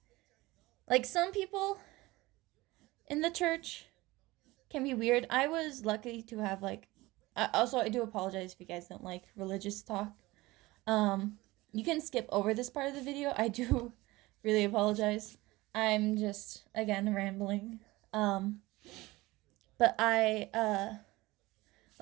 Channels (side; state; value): left; quieter; 20.1 dB